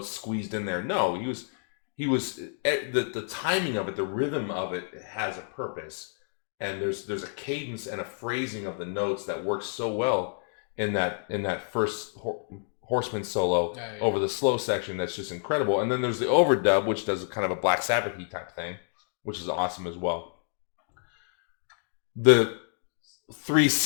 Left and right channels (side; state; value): right; silent; 59 dB below the other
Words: squeezed in there. No, he was the timing of it, the rhythm of it has a purpose, and there's a cadence and a phrasing of the notes that works so well in that first Horseman solo over the slow section. That's just incredible. And then there's the overdub, which does kind of a Black Sabbath-y type thing, which is awesome as well. The